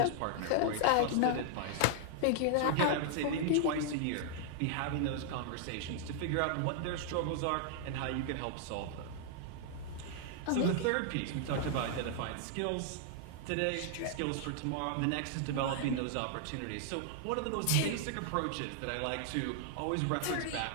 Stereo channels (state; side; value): different; both; correlation -0.01